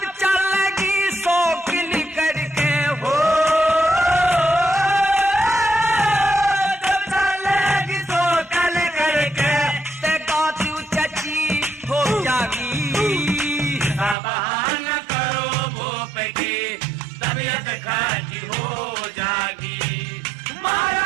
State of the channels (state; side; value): drops out; left; at 14.2 s